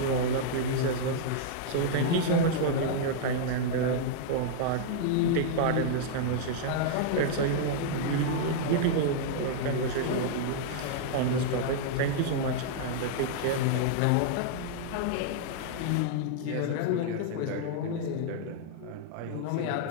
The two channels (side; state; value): both; different; correlation -0.01